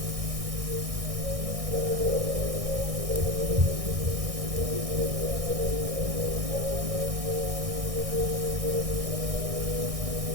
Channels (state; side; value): late; left; 1.6 ms